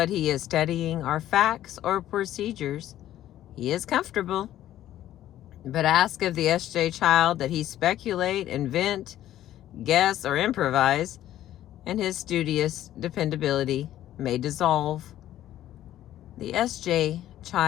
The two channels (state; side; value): quieter; right; 12.8 dB